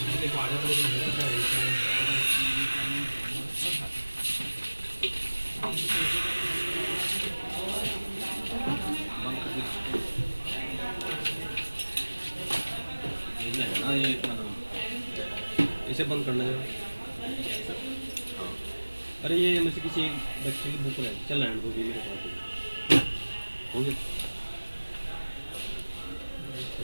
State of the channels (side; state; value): both; inverted; correlation -1.00